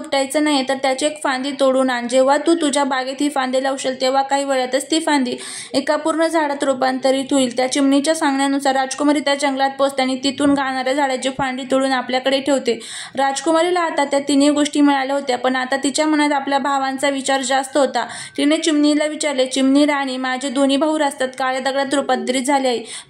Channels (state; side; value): identical; both; correlation 1.00